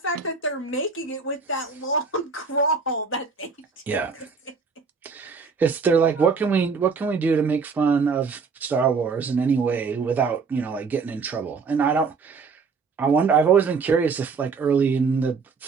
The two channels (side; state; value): left; quieter; 5.0 dB